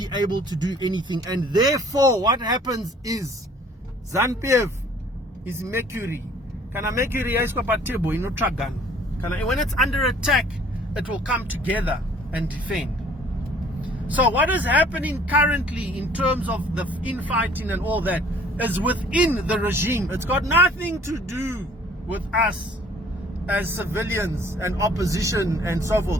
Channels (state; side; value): normal; both; correlation 0.55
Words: able to do anything. And therefore what happens is ZANU-PF is Mercury. Kana Mercury yaiswa pa table inotsvagana. Kana when it's under attack, it will come together and defend. So what is happening currently in terms of the infighting and all that is within the regime. It's got nothing to do with us as civilians and opposition and so